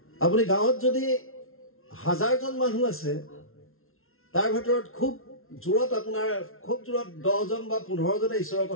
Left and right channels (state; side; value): late; right; 0.62 ms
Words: আপুনি গাঁৱত যদি 1000 জন মানুহ আছে তাৰ ভিতৰত খুব জোৰত আপোনাৰ খুব জোৰত 10 জন বা 15 জনে ঈশ্বৰৰ